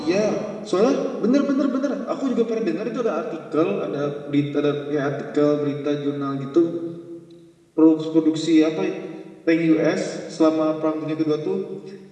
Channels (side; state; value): both; identical; correlation 1.00